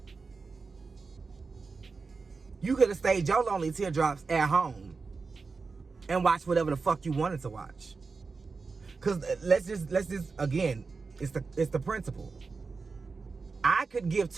You could have stayed your lonely teardrops at home and watched whatever the fuck you wanted to watch. Cause let's just again, it's the principle. I could give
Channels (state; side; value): quieter; left; 4.5 dB